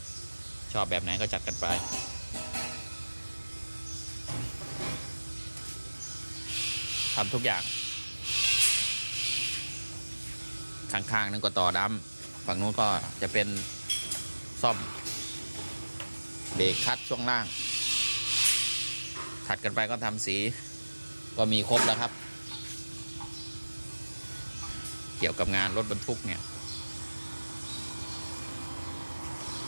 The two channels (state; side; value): inverted; both; correlation -1.00